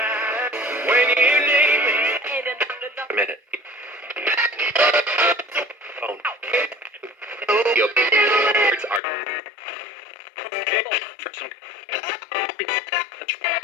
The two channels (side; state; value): right; drops out; at 9.0 s